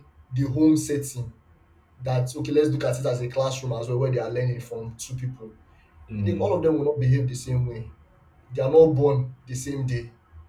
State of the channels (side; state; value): both; identical; correlation 1.00